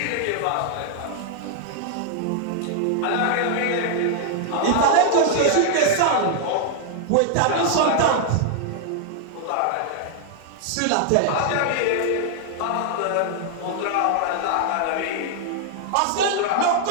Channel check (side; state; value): both; different; correlation -0.01